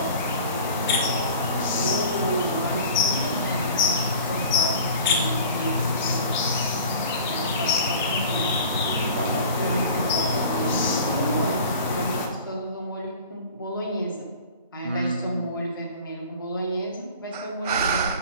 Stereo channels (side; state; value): both; inverted; correlation -0.41